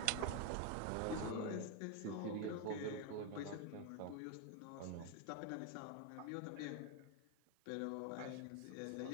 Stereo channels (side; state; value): both; different; correlation 0.01